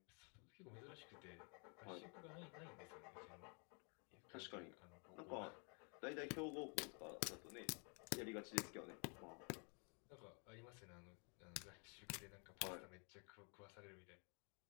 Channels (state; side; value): quieter; right; 36.7 dB